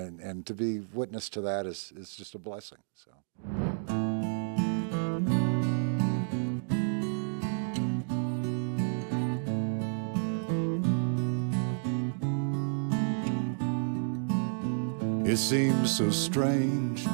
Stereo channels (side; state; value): left; silent; digital silence